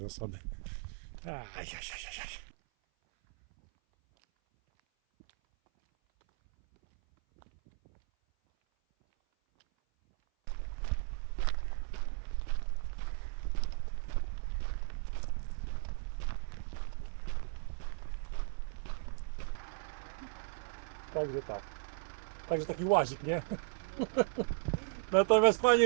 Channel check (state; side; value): silent; left; 54 dB below the other